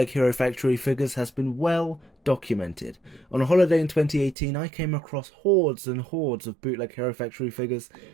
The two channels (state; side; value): drops out; left; at 4.4 s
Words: Hero Factory figures has been well documented. On a holiday in 2018, I came across hordes and hordes of Bootleg Hero Factory figures,